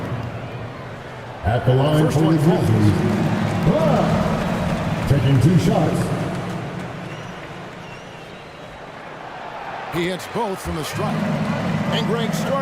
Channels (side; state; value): both; identical; correlation 1.00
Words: At the line First for the one Grizzlies. Taking 2 shots. He hits both from the stripe. And Greg,